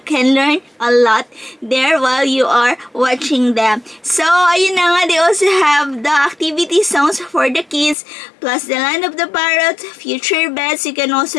can learn a lot there while you are watching them. So, ayun na nga, they also have the activity zones for the kids, plus the land of the parrot, future beds. You can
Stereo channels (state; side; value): drops out; right; at 8.0 s